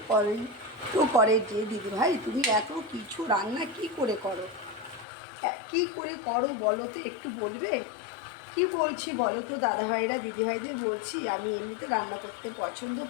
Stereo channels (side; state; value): right; drops out; at 5.1 s